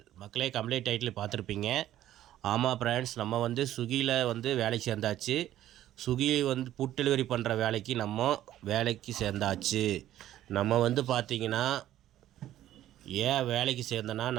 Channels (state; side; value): quieter; left; 12.9 dB